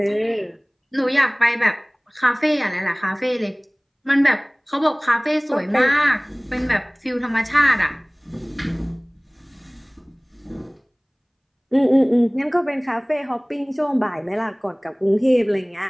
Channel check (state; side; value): identical; both; correlation 1.00